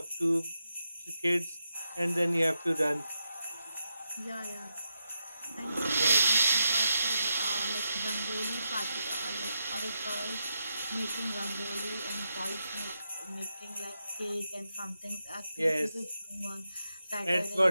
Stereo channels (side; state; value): both; inverted; correlation -0.86